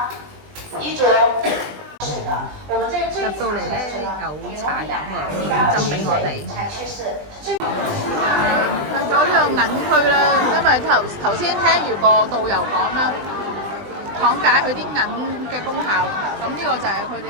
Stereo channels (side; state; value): left; late; 20 ms